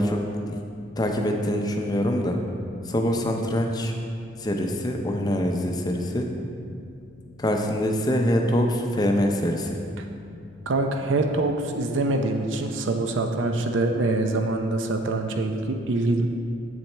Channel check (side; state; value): left; noise; hum, 26 dB below the sound